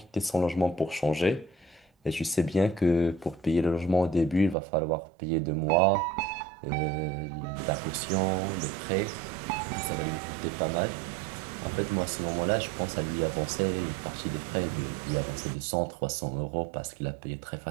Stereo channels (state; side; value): drops out; left; at 4.5 s